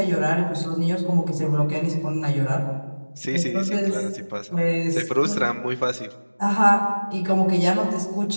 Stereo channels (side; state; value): both; inverted; correlation -1.00